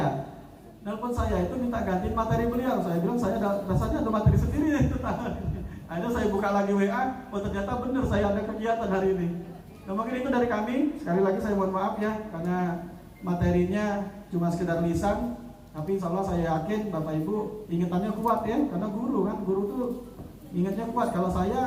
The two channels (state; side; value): identical; both; correlation 1.00